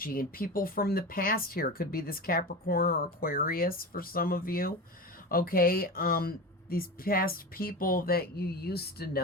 and people from the past here. It could be this Capricorn or Aquarius for some of you. Okay, these past people that you used to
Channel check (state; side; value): normal; both; correlation 0.27